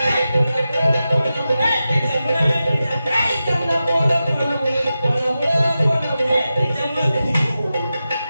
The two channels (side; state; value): both; inverted; correlation -0.92